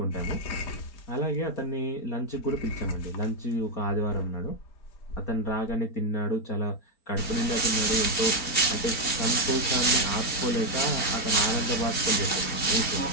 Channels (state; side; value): late; right; 4.4 ms